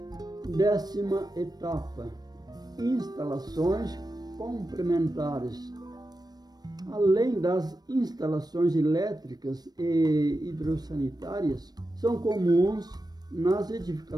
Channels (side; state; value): left; late; 0.19 ms